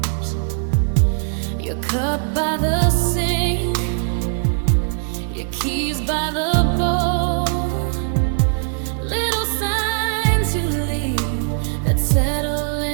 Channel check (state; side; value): silent; left; digital silence